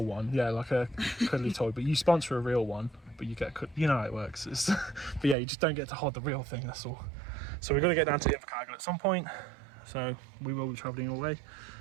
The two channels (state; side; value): drops out; left; at 5.4 s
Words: one. Yeah, like a cuddly toy. But you sponsor a real one, but you get, you know how it works. It's, but yeah, you just don't get to hold the real thing. That's all. So we're going to get down to Invercargill at some point. So we will be travelling away,